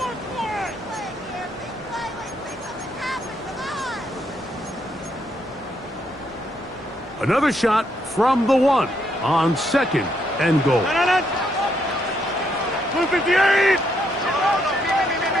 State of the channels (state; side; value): normal; both; correlation 0.75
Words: Another shot from the 1 on second and goal. Blue 58!